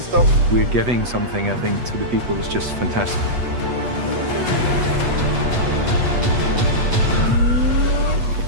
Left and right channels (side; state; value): left; late; 8.2 ms